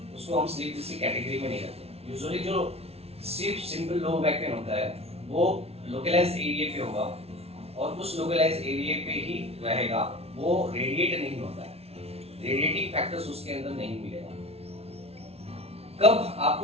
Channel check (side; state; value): left; late; 0.30 ms